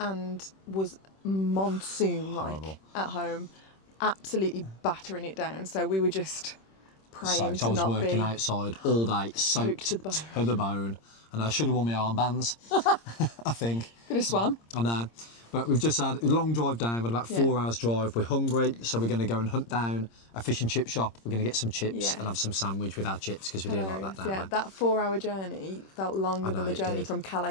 was monsoon-like at home, absolutely battering it down. So we were just praying I was working outside all day, soaked to the bone, and I should have worn my armbands. I think. Could have swam. I know, but we've just had a long drive down. We've had about 4 hours drive. We're hungry, so we're going to go and hunt down a fish and chip shop. We're going to get some chips and have some sandwich with our chips because we do like that, don't we? That 4-hour journey felt longer than the journey from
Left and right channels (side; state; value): right; late; 26 ms